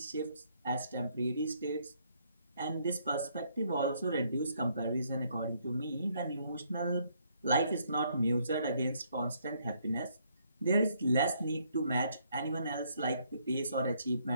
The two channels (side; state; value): both; inverted; correlation -0.70